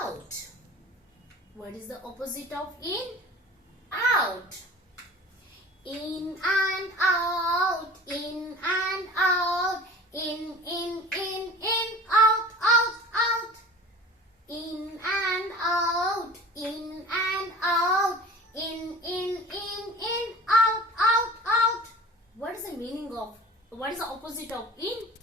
What is the opposite of in? Out. In and out. In and out. In, out, out, out. In and out. In and out. In, out, out, out. What is the meaning of, what is the opposite of in?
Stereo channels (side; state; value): both; normal; correlation 0.40